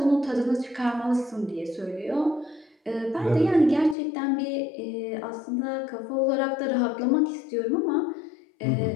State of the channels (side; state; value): right; drops out; at 4.0 s